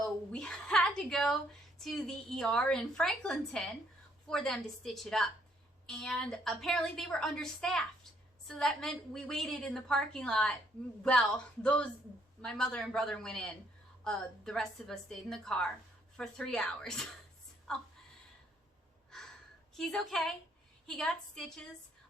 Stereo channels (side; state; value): both; normal; correlation 0.69